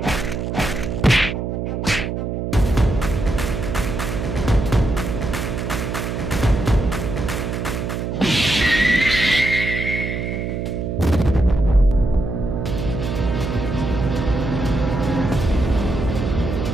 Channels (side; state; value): right; noise; hum, 3 dB below the sound